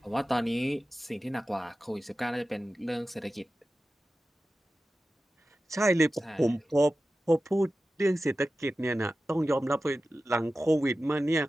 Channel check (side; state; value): both; normal; correlation 0.94